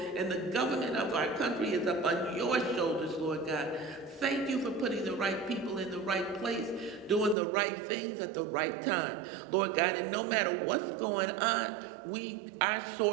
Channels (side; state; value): left; drops out; at 7.4 s